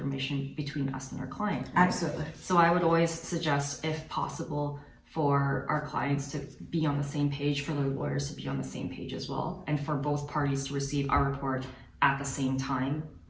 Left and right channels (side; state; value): both; identical; correlation 1.00